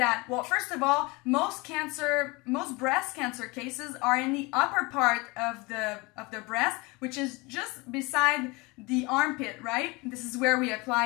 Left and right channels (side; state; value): right; quieter; 25.4 dB